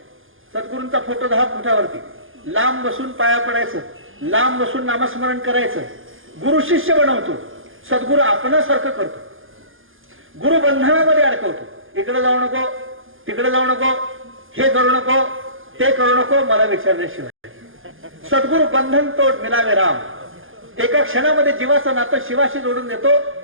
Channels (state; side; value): late; left; 0.59 ms